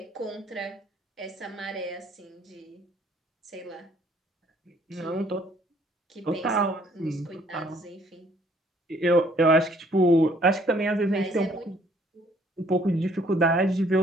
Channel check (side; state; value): both; normal; correlation 0.62